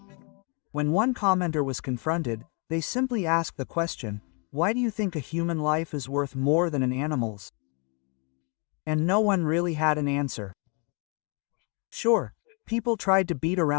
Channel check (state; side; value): quieter; right; 36.0 dB